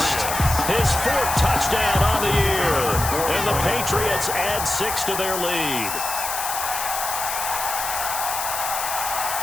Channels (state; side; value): noise; left; hiss, 4 dB below the sound